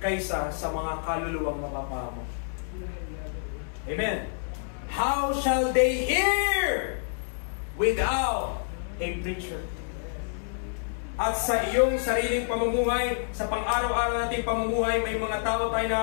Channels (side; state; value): right; silent; digital silence